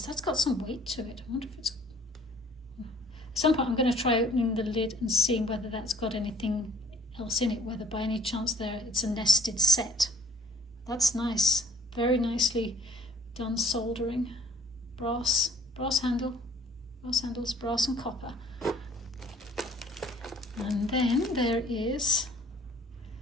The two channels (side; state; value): both; normal; correlation 0.54